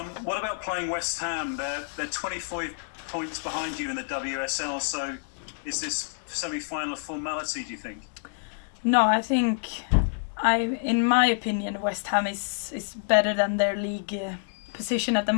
What about playing West Ham? They're 25 points behind you in the WSL, so is this semi-final a formality, do you think? No, I think, in my opinion, West Ham is better than their league position at the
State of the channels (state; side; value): silent; right; digital silence